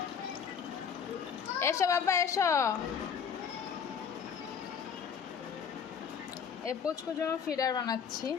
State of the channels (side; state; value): right; quieter; 7.0 dB